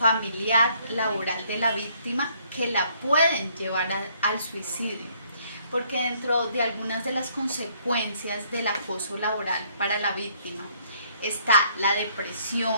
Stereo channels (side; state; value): both; inverted; correlation -0.65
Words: laboral de la víctima, que la pueden llevar al suicidio. Porque dentro de algunas de las consecuencias del acoso laboral para la víctima está la